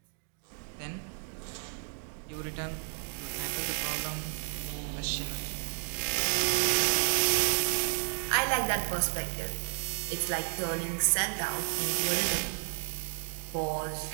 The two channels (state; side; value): silent; left; 56 dB below the other